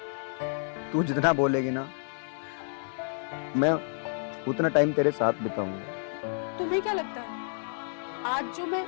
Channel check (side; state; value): right; silent; digital silence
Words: तू जितना बोलेगी ना, मैं उतना टाइम तेरे साथ बिताऊंगा। तुम्हें क्या लगता है आज जो मैं